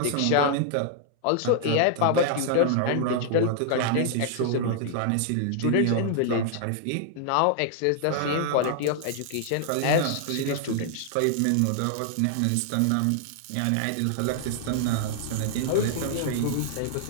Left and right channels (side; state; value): both; different; correlation -0.01